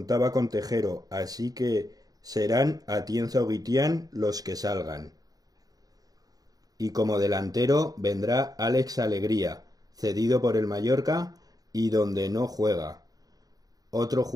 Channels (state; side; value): late; left; 0.18 ms